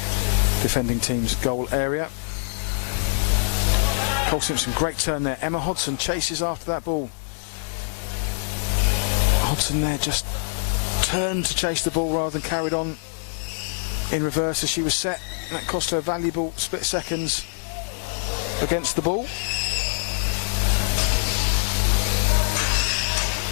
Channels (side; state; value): right; silent; 63 dB below the other